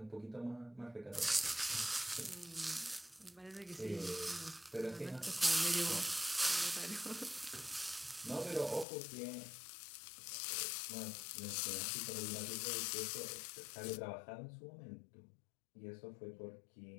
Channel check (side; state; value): right; drops out; at 8.8 s